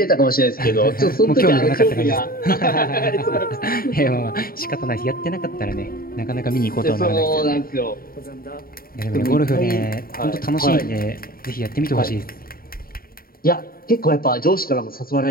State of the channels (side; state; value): right; late; 0.43 ms